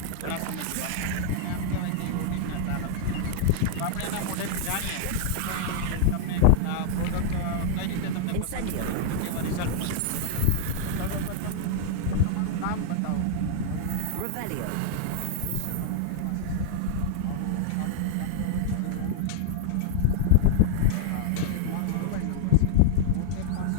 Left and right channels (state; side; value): different; both; correlation 0.00